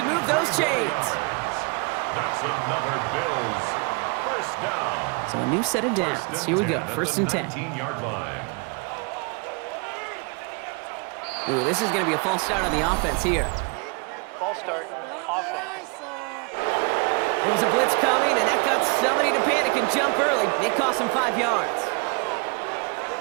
move those chains. That's another Bills 1st down. So a new set of downs. Here we go, 1st and 10. 19-yard line. Ooh, this is going to be a false start on the offense here. False start, offense. There was a blitz coming, and that got somebody to panic and jump early. It cost him 5 yards.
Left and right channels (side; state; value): left; quieter; 33.2 dB